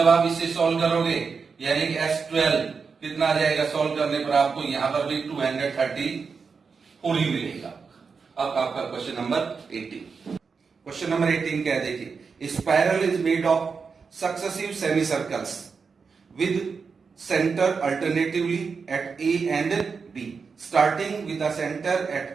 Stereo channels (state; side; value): quieter; left; 5.3 dB